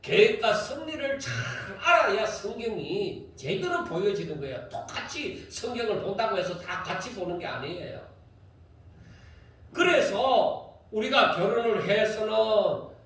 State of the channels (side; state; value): both; identical; correlation 1.00